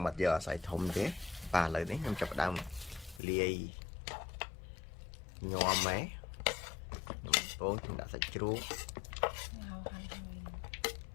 អត់យកអាស័យធំទេបាទឥឡូវនេះខ្ញុំចាប់ផ្ដើមលាយញោមហ្នឹងបងខ្ញុំដាក់សាច់ជ្រូកខ្ញុ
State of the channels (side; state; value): right; drops out; at 3.2 s